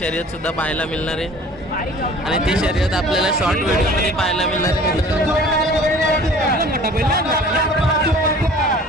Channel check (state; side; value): normal; both; correlation 0.47